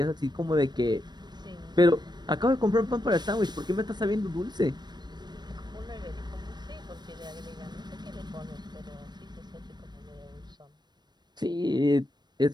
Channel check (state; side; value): late; left; 0.21 ms